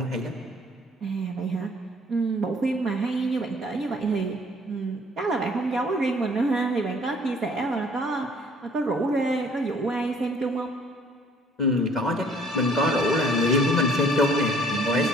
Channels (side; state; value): both; normal; correlation 0.58